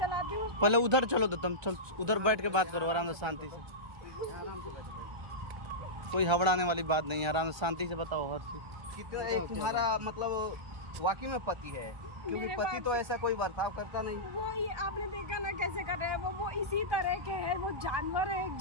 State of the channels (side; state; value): left; late; 1.3 ms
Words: हूँ। पहले उधर चलो, तो तुम चल उधर बैठ के बात करो आराम से, शांति से। कोई हबड़ाने वाली बात नहीं है, आराम से शांति से बताओ हर चीज। कितना एक तुम्हारा मतलब वाकई में पति है? क्योंकि मेरे पति पास- तो ऐसा कोई बर्ताव करता नहीं। वो ये आपने देखा ना कैसे कर रहे हैं, वो इसी तरह के हैं, वो जानवर है, एक